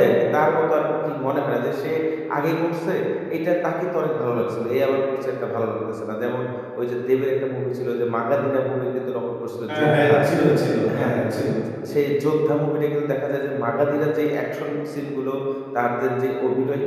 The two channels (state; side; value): identical; both; correlation 1.00